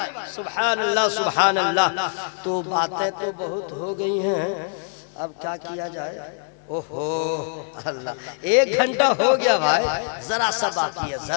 सुभान अल्लाह सुभान अल्लाह। तो बातें तो बहुत हो गई हैं, अब क्या किया जाए? ओहो अल्लाह, 1 घंटा हो गया भाई, जरा सा बाकी है,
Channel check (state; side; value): silent; right; 63 dB below the other